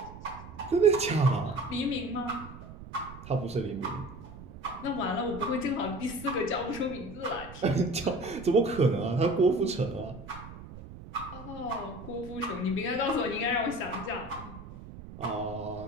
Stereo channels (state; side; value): noise; right; rumble, 14 dB below the sound